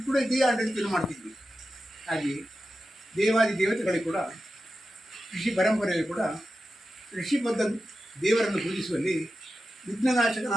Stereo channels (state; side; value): normal; both; correlation 0.91